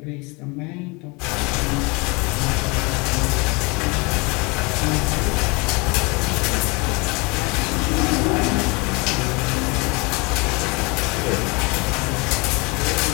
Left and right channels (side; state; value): right; quieter; 27.9 dB